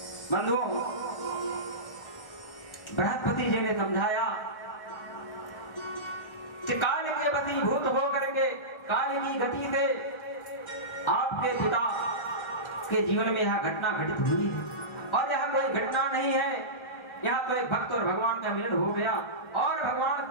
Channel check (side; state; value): right; late; 1.4 ms